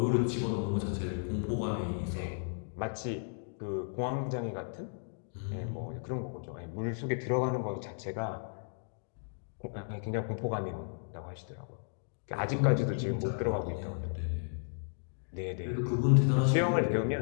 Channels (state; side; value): silent; right; digital silence